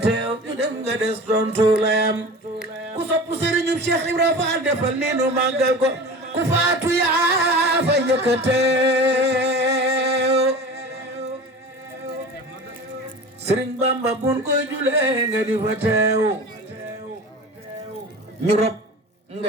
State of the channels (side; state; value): both; normal; correlation 0.35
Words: teew ñu dem nga des tontu layam ku sopp Serigne Cheikh Ibra Fall defal ni nu màggal ko ku faatu yaa fa njëkk a teew Serigne Bamba bun koy julee nga di fa teew ñu rob